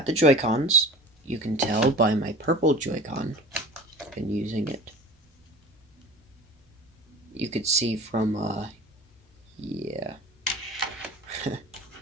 the Joy-Cons. You can tell by my purple Joy-Con. I've been using it. You could see from, yeah.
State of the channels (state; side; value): normal; both; correlation 0.39